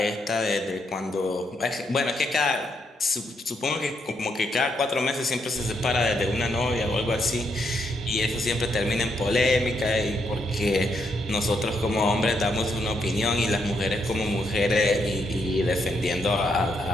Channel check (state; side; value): normal; both; correlation 0.77